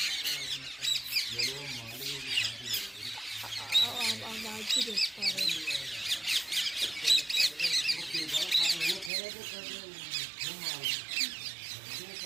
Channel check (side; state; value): left; drops out; at 9.1 s